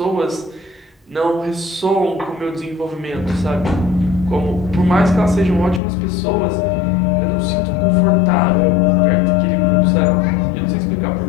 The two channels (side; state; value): right; drops out; at 5.8 s